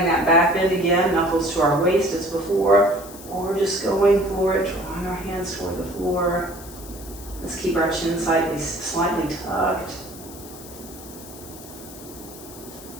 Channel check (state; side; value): noise; left; hiss, 16 dB below the sound